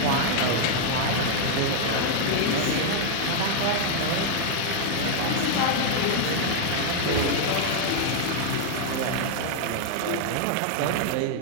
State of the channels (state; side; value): different; both; correlation 0.00